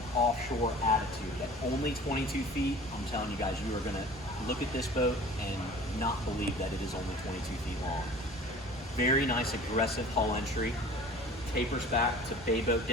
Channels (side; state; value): both; normal; correlation 0.44